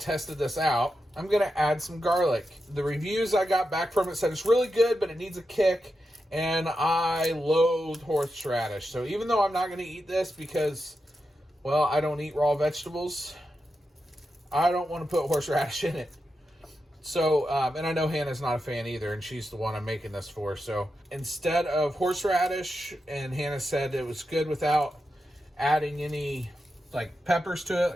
this out, I'm going to add some garlic. The reviews I got back from it said it's really good, but it needs a kick. And I loathe horseradish. So even though I'm not going to eat this because, well, I don't eat raw vegetables, I don't want to put horseradish in it. So, and I know Hannah's not a fan either, and she's the one I'm making this for. So instead of horseradish, and Hannah said it was good without adding any like peppers to it,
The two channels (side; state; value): both; normal; correlation 0.88